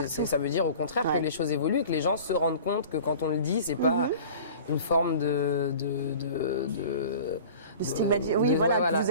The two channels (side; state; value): both; inverted; correlation -0.42